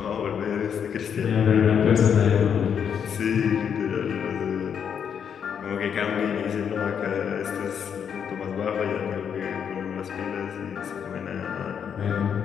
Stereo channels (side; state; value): right; quieter; 7.7 dB